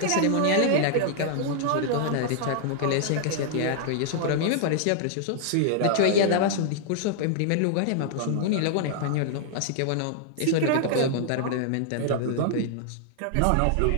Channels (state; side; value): different; both; correlation -0.01